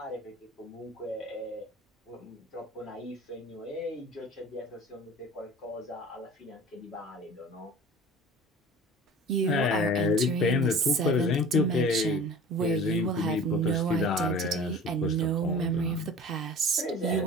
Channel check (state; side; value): normal; both; correlation 0.41